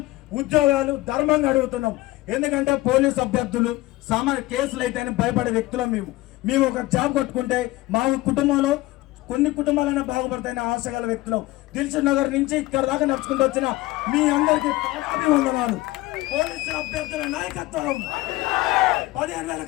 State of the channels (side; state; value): right; quieter; 18.7 dB